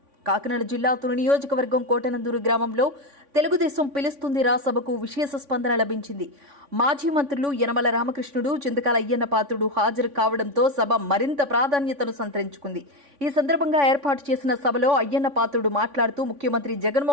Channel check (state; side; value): late; left; 3.5 ms